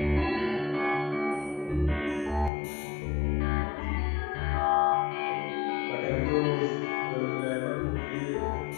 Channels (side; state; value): right; drops out; at 2.5 s